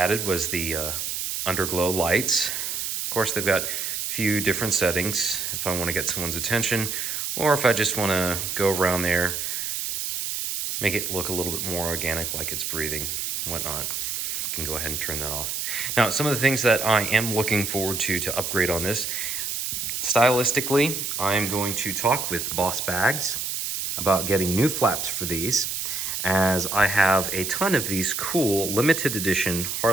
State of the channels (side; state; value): right; noise; hiss, 3 dB below the sound